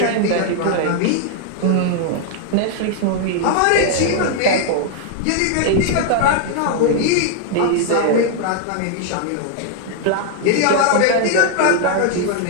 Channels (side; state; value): both; different; correlation 0.00